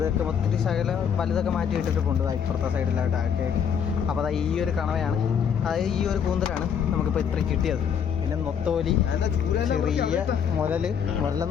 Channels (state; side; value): quieter; right; 7.6 dB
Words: ഒത്തിരി വലുതൊക്കെ മാറ്റി ഇട്ടിട്ടുണ്ട് ഇപ്പുറത്തെ സൈഡിലായിട്ടൊക്കെ ആയിട്ട്. അപ്പോൾ അതാ ഈ ഒരു കണവയാണ്, അതായത് ഈ ഒരു കൂന്തലാണ് നമുക്കിപ്പോൾ ഇത്രയും കിട്ടിയത്. പിന്നെ നൊത്തോലി, ചെറിയ